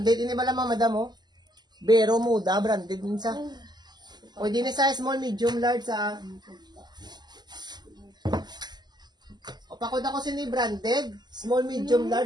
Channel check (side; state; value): left; late; 0.21 ms